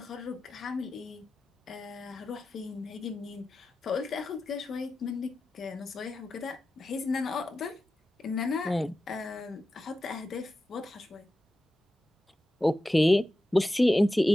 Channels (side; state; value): both; normal; correlation 0.92